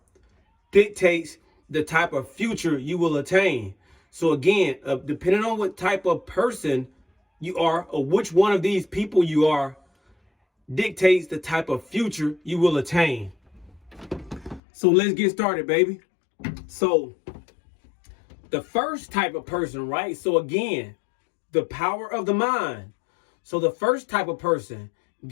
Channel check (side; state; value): right; drops out; at 14.6 s